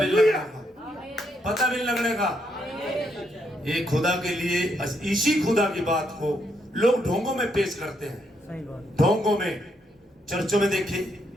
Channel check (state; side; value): normal; both; correlation 0.76